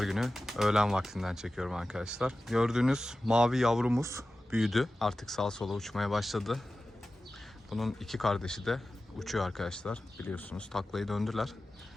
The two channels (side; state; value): both; normal; correlation 0.95